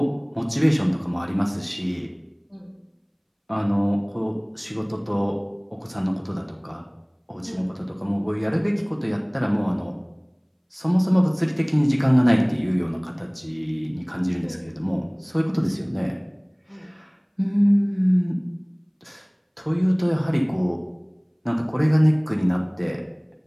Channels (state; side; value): identical; both; correlation 1.00